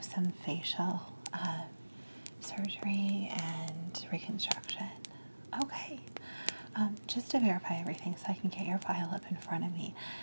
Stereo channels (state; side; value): inverted; both; correlation -1.00